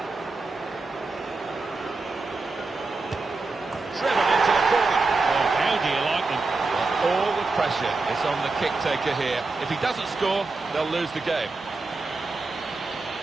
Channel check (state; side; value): quieter; left; 3.7 dB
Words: Driven into the corner. Oh, how do you like them? Well, all the pressure is on the kick-taker here. If he doesn't score, they'll lose the game.